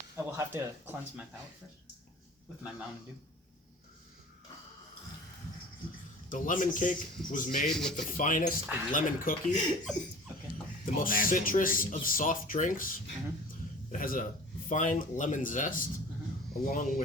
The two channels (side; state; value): both; normal; correlation 0.42